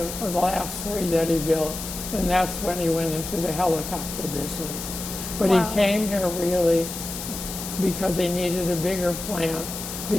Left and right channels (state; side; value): noise; left; hiss, 8 dB below the sound